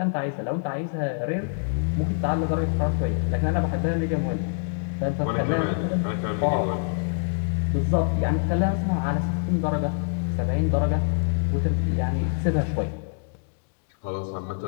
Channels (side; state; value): right; silent; digital silence